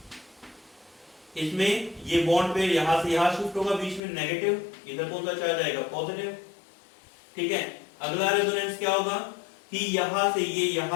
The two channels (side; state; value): right; drops out; at 4.0 s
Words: इसमें ये बॉन्ड पे यहां से यहां शिफ्ट होगा, बीच में नेगेटिव, इधर कौन सा चार्ज आएगा? पॉजिटिव। ठीक है, अगला रेजोनेंस क्या होगा कि यहां से ये